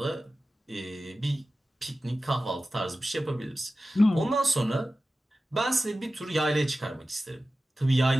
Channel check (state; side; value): normal; both; correlation 0.95